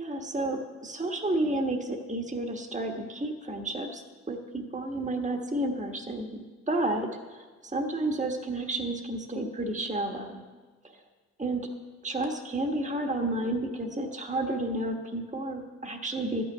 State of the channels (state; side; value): normal; both; correlation 0.43